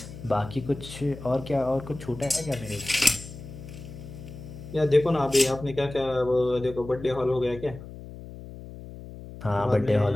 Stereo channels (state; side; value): noise; left; hum, 14 dB below the sound